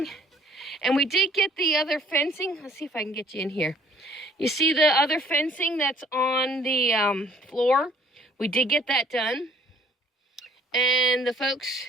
And we did get the other fencing. Let's see if I can get you in here. You see the other fencing that's on the floor? We did get that done. And the folks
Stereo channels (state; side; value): normal; both; correlation 0.57